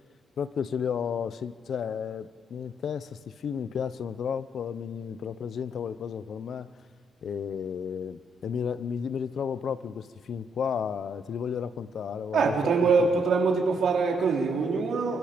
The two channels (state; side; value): normal; both; correlation 0.72